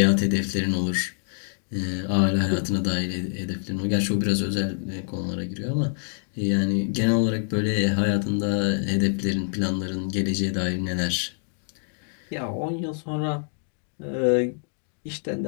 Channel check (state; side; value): silent; right; 61 dB below the other